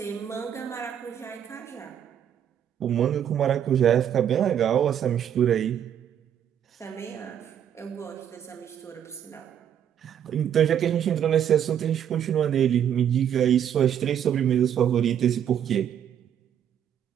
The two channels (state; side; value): quieter; left; 9.4 dB